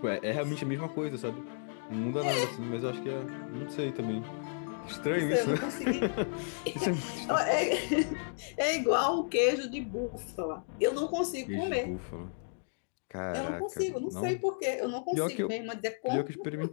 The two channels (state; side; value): silent; right; digital silence